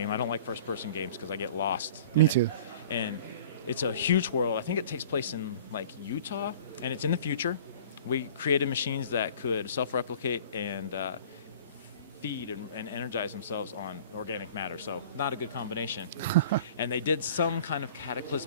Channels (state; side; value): inverted; both; correlation -0.46